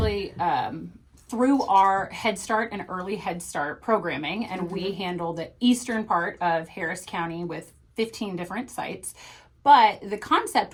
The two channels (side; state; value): both; identical; correlation 1.00